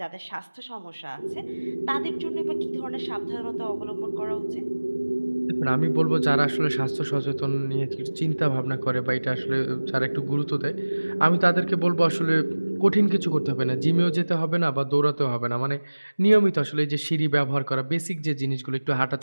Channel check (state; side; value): inverted; both; correlation -1.00